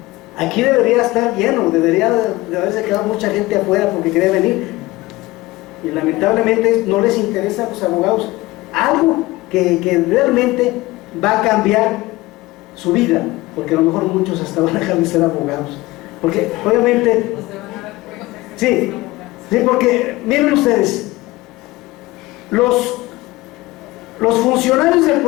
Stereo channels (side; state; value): right; quieter; 19.9 dB